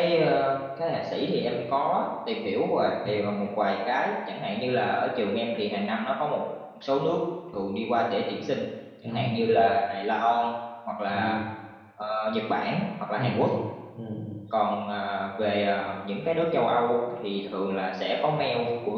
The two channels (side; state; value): both; identical; correlation 1.00